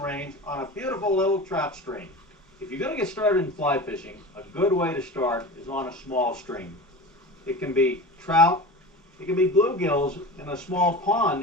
range on a beautiful little trout stream. If you're going to get started in fly fishing, a good way to start is on a small stream. It can be trout, it can be bluegills in a small pond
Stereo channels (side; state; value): both; normal; correlation 0.32